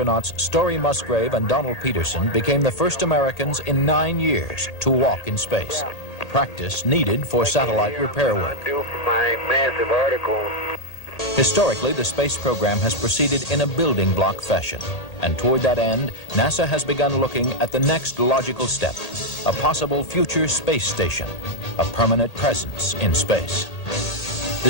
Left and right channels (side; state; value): right; late; 1.8 ms